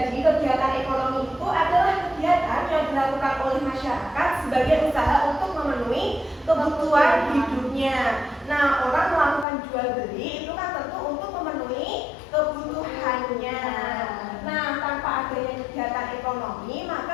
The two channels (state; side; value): drops out; right; at 9.5 s